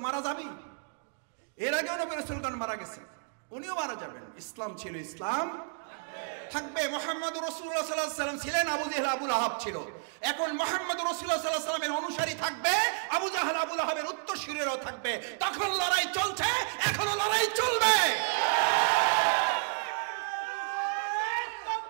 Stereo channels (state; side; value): silent; left; digital silence